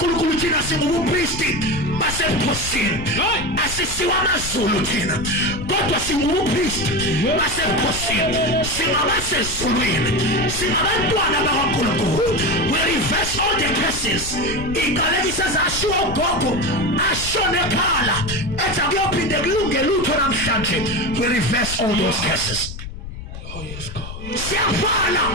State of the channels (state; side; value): noise; left; rumble, 10 dB below the sound